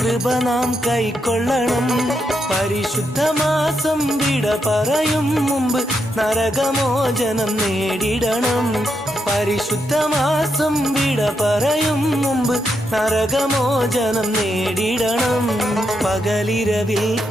നാം കൈക്കൊള്ളണം. പരിശുദ്ധ മാസം വിട പറയും മുമ്പ് നരകമോചനം നേടിടണം. പരിശുദ്ധ മാസം വിട പറയും മുമ്പ് നരകമോചനം നേടിടണം. പകലിരവിൽ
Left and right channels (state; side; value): normal; both; correlation 0.81